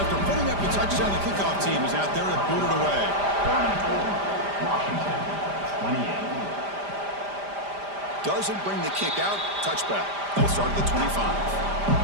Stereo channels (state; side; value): late; left; 5.0 ms